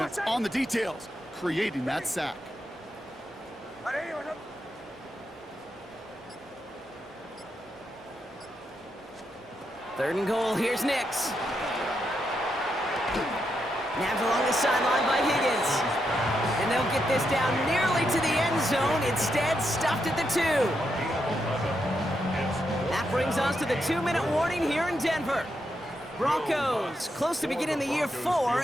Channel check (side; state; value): both; normal; correlation 0.82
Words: on the details, creating that sack. Third and goal, here's Nix. Nabbed along the sideline by Higgins. And they'll get this down nearly to the end zone. Instead, stuffed at the 2. That brings us to the 2-minute warning here in Denver. Broncos, close to beginning the year